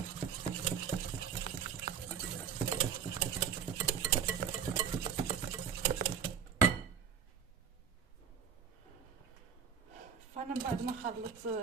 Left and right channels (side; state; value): left; quieter; 7.3 dB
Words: فانا من بعد ما خلطت